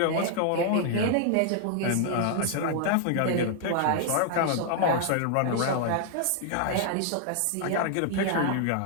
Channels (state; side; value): different; both; correlation 0.00